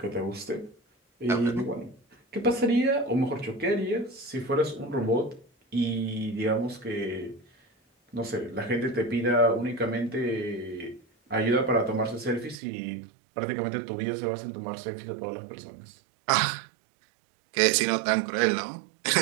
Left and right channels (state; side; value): drops out; left; at 12.6 s